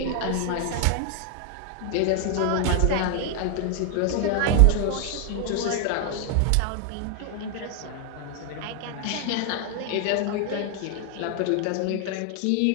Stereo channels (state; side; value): different; both; correlation 0.00